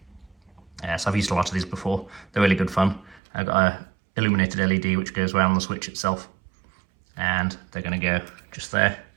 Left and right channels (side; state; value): left; drops out; at 3.2 s